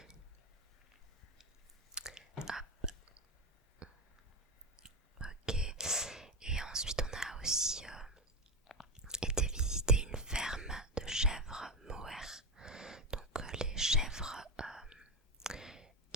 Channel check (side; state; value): both; normal; correlation 0.14